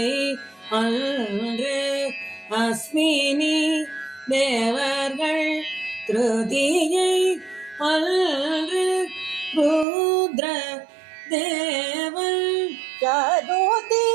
அன்று அஸ்வினி தேவர்கள் திருதியை அன்று ருத்ர தேவன் சதுர்த்தி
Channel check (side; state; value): left; drops out; at 9.9 s